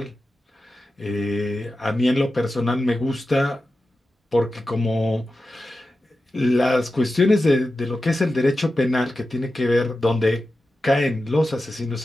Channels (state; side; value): normal; both; correlation 0.92